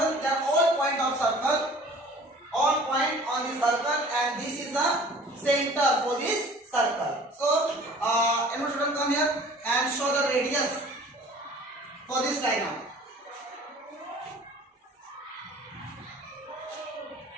they are all point of circle, all point on the circle and this is the center for this circle. So anyone student come here and show the radius for this diagram.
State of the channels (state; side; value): normal; both; correlation 0.48